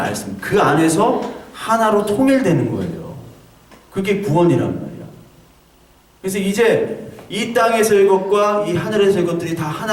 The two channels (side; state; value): both; identical; correlation 1.00